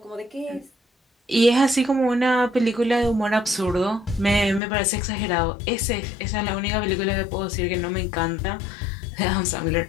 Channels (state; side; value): drops out; right; at 4.6 s